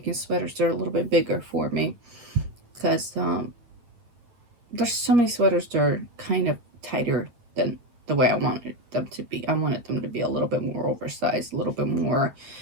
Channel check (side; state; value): left; late; 8.8 ms